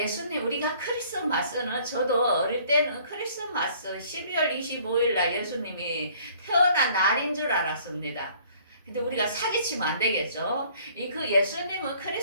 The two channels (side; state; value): both; inverted; correlation -0.57